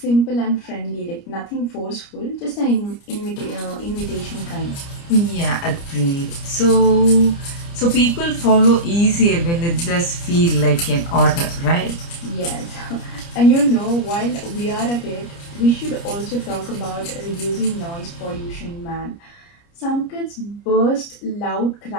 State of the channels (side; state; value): right; late; 29 ms